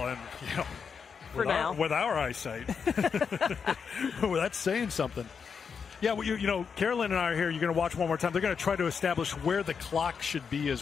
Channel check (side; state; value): right; quieter; 6.2 dB